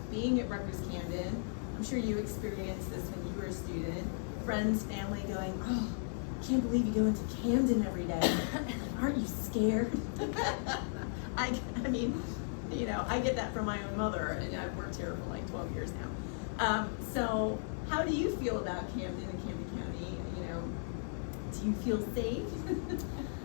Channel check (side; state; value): right; silent; 54 dB below the other